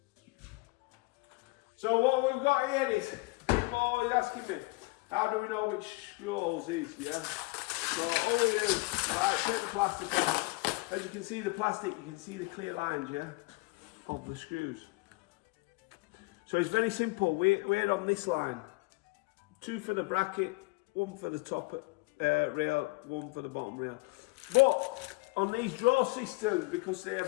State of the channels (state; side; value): quieter; right; 24.9 dB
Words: So what we've got here is, people are always asking me, how do we know which screw holes is, yeah? So all we do, right, take the plastic off. As you can see the plastic, you can see the clear lines, yeah, of the screws. So it's very simple, we're on this line. 2 for the bracket, 1 for the top rail, 1 for the bottom rail. But on these draw systems, because they